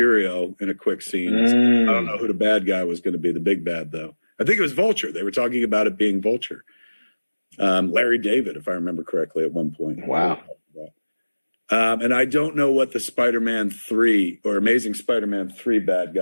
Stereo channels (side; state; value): both; inverted; correlation -1.00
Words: in a quick scene. I don't know who the bad guy was going to be, the big bad though. I think it was Vulture. They were talking about it being Vulture. Larry David, if I remember correctly, at one point. Wow. And I don't know what the Spider-Man 3 or Amazing Spider-Man 3 bad